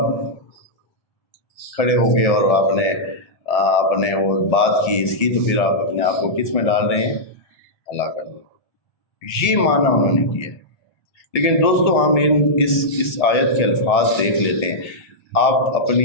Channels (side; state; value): right; late; 1.7 ms